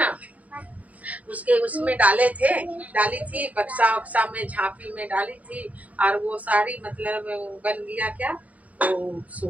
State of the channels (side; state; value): left; late; 0.071 ms